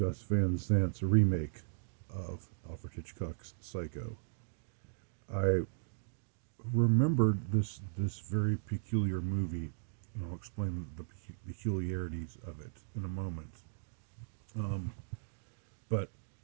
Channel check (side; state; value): left; silent; digital silence